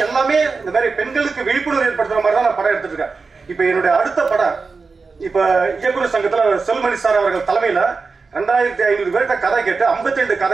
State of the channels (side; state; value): left; quieter; 4.5 dB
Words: எல்லாமே இந்த மாதிரி பெண்களுக்கு விழிப்புணர்வு ஏற்படுத்துற மாதிரி தான் நான் படம் எடுத்துட்டு இருக்கேன். இப்ப என்னுடைய அடுத்த படம், இப்ப இயக்குநர் சங்கத்துல செல்மணி சார் அவர்கள் தலைமையில 2500 பேர்கிட்ட கதை கேட்டு 52